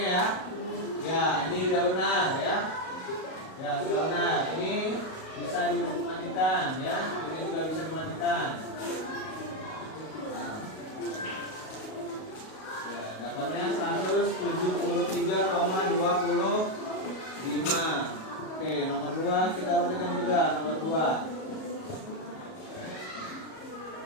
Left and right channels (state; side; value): late; right; 38 ms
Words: ya. Ya, ini udah benar ya. Ya, sudah benar. Ini bisa dimatikan ya. Ini juga bisa dimatikan. Nah. Ya, dapatnya 173,25. Oke, nomor 2 kita perhatikan juga nomor 2.